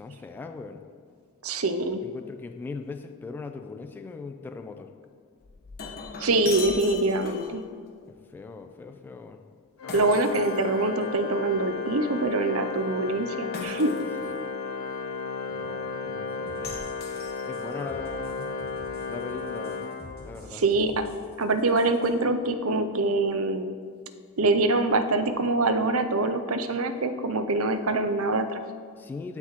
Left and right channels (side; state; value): both; normal; correlation -0.04